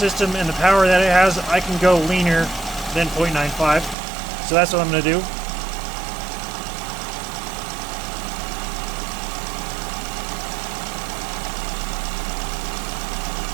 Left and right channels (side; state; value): left; drops out; at 4.0 s